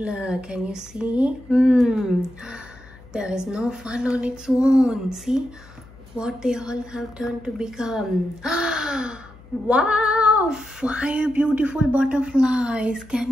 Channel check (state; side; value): noise; left; hum, 22 dB below the sound